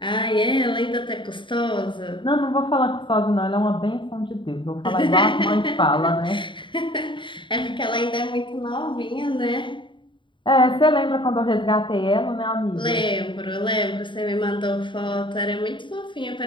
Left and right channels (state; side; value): late; right; 0.23 ms